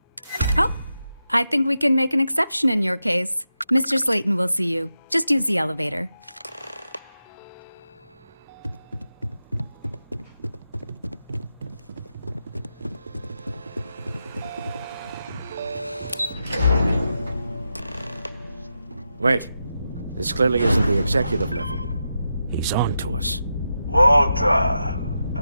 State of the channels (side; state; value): both; inverted; correlation -0.88